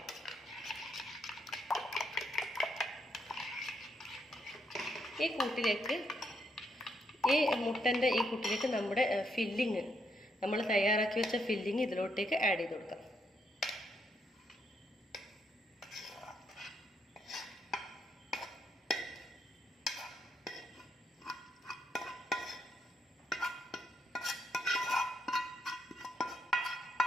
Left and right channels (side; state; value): both; normal; correlation 0.77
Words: ഈ കൂട്ടിലേക്ക്, ഈ മുട്ടൻ്റെ ഈ കൂട്ടിലേക്ക് നമ്മുടെ ഫില്ലിങ്, നമ്മൾ തയ്യാറാക്കി വെച്ച ഫില്ലിങ് ഇതിലോട്ടേക്ക് ആഡ് ചെയ്ത് കൊടുക്കാം.